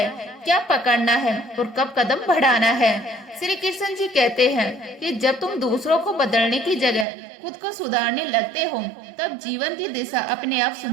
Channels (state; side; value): drops out; left; at 7.1 s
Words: क्या पकड़ना है और कब कदम बढ़ाना है। श्री कृष्ण जी कहते हैं कि जब तुम दूसरों को बदलने की जगह खुद को सुधारने लगते हो, तब जीवन की दिशा अपने आप